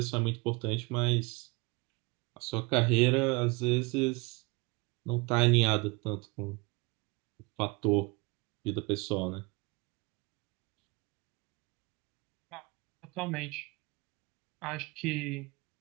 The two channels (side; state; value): left; quieter; 26.9 dB